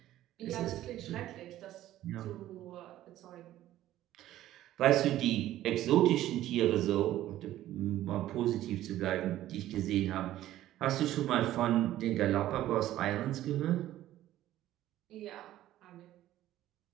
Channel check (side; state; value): left; quieter; 13.8 dB